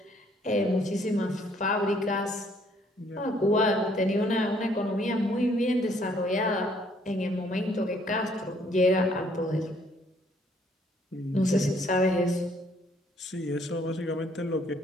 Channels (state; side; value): normal; both; correlation 0.65